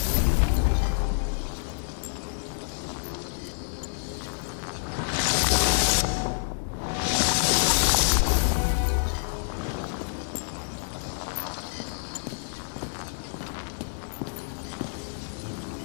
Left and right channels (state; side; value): silent; right; 60 dB below the other